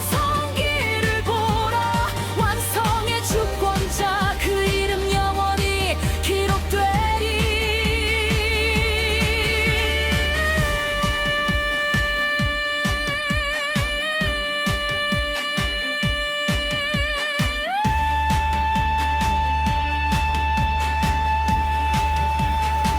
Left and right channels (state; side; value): identical; both; correlation 1.00